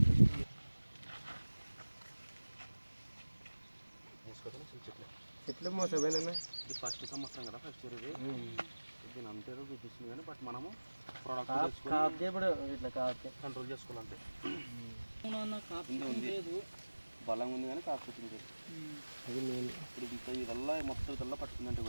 చెట్లు మోసపోయినా ఇది ఫస్ట్ సంవత్సరం కదా, ఫస్ట్ ఇయర్ ఇది. దీని అంతేదో చూపిస్తుంది కానీ బట్ మనము ప్రోడక్ట్ ఇట్లా కాదు కంట్రోల్ చేసుకోవాలంటే ఉంది బలం ఉంది కానీ కాకపోతుంది. అది నేను ఇప్పుడు ఇదల్లా మొత్తం ఇదల్లా పట్టుకుందంటే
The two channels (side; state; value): both; inverted; correlation -1.00